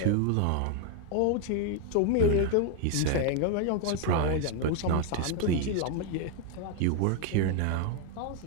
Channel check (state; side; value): different; both; correlation 0.01